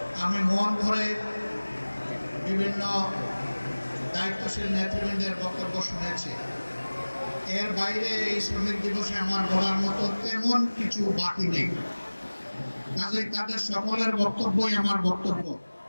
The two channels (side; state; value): both; inverted; correlation -1.00